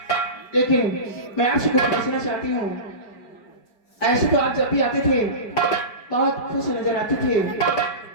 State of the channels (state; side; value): late; right; 4.9 ms